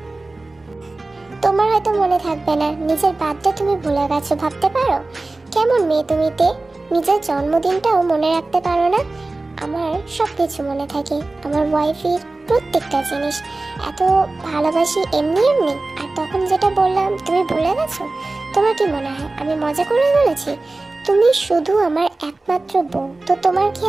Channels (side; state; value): left; quieter; 3.2 dB